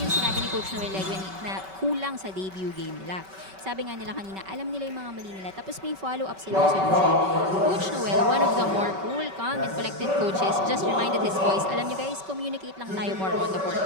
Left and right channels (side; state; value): left; late; 5.2 ms